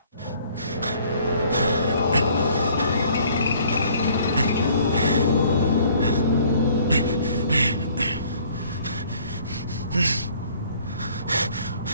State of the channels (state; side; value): inverted; both; correlation -0.58